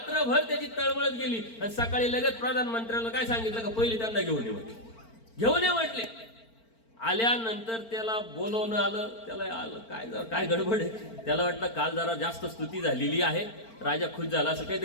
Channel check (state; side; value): late; right; 4.4 ms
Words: त्याची तळमळत गेली आणि सकाळी लगेच प्रधानमंत्र्याला काय सांगितलं का, पहिली त्यांना घेऊन ये म्हटले. घेऊन ये म्हटले. आल्यानंतर त्याला बोलवणं आलं, त्याला आलं काय गडबड आहे, त्याला वाटलं काल जरा जास्त स्तुती झालेली आहे, राजा खुश झाला, असं